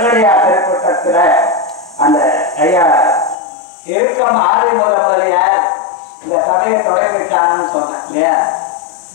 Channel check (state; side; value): drops out; right; at 3.4 s